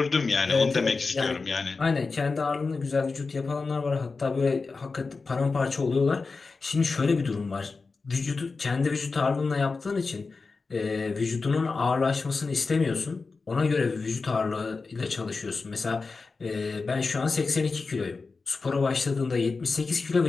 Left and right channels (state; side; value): quieter; right; 4.2 dB